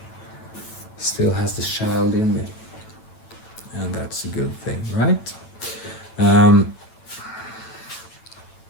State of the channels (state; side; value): late; right; 9.1 ms